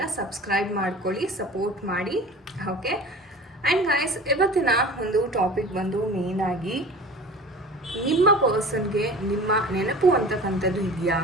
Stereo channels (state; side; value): normal; both; correlation 0.39